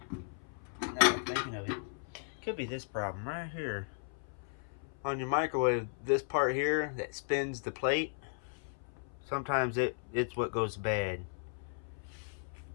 now I'm thinking of it, could be this problem right here. On your microwave, this part here that spins the plate, sometimes it's what goes bad.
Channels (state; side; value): silent; right; 54 dB below the other